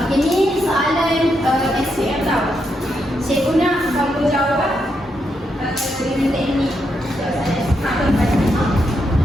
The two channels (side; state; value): both; normal; correlation 0.81